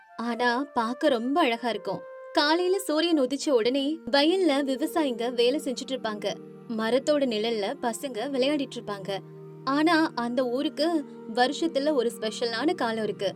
ஆனா பார்க்க ரொம்ப அழகா இருக்கும். காலையில சூரியன் உதிச்ச உடனே வயல்ல விவசாயிங்க வேலை செஞ்சுட்டு இருப்பாங்க. மரத்தோட நிழல்ல பசங்க விளையாடிட்டு இருப்பாங்க. ஆனா அந்த ஊருக்கு வருஷத்துல ஒரு ஸ்பெஷலான காலம் இருக்கு.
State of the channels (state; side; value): identical; both; correlation 1.00